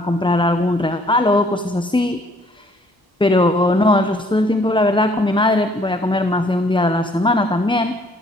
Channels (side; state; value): both; normal; correlation 0.61